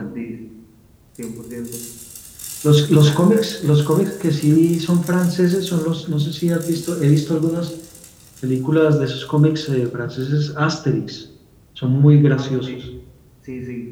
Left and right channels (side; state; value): both; identical; correlation 1.00